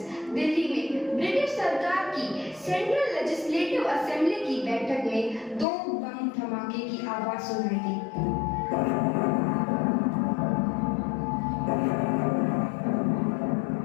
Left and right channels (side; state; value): right; drops out; at 5.7 s